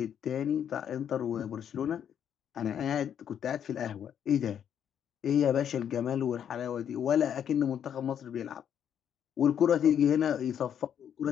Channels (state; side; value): quieter; right; 9.0 dB